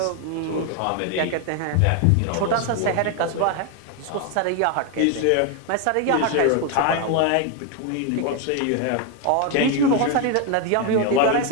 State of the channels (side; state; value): both; different; correlation 0.01